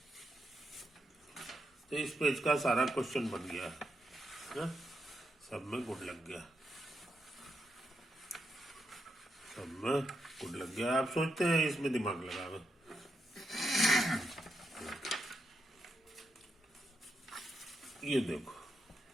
तो इस पेज का सारा क्वेश्चन बन गया है, सब में गुड लग गया, सब में गुड लग गया। आप सोचते हैं इसमें दिमाग लगावे, ये देखो,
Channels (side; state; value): both; normal; correlation 0.83